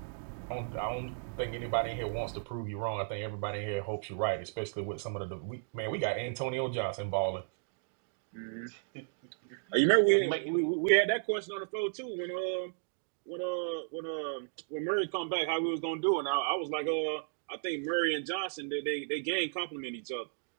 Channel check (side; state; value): left; silent; digital silence